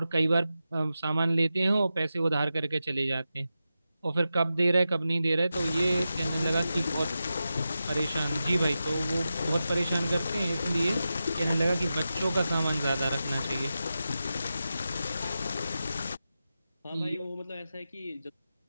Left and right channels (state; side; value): inverted; both; correlation -0.91